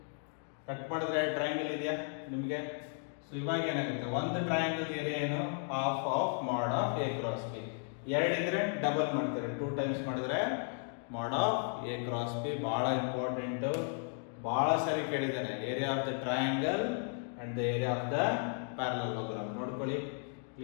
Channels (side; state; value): right; silent; 55 dB below the other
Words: ಕಟ್ ಮಾಡಿದ್ರೆ ಟ್ರಯಾಂಗಲ್ ಇದೆಯಾ ನಿಮಗೆ? ಸೊ ಇವಾಗ ಏನಾಗುತ್ತೆ, ಒಂದು ಟ್ರಯಾಂಗಲ್ ಏರಿಯಾ ಏನು, half of mod of A cross B. ಎರಡಿದ್ರೆ ಡಬಲ್ ಮಾಡ್ತಾರೆ, 2 ಟೈಮ್ಸ್ ಮಾಡಿದ್ರೆ mod of A cross B. ಬಹಳ ಇಂಪಾರ್ಟೆಂಟ್, ಬಹಳ ಸರಿ ಕೇಳಿದ್ದಾನೆ. Area of the triangle and the area of the parallelogram ನೋಡ್ಕೊಳ್ಳಿ,